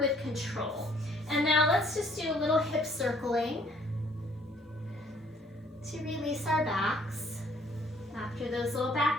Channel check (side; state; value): both; normal; correlation 0.61